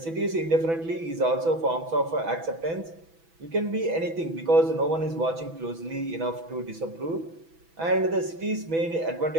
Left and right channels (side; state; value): left; late; 6.1 ms